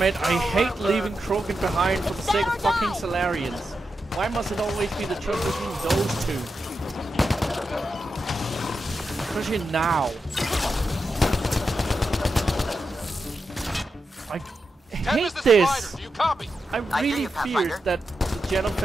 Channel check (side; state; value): both; normal; correlation 0.88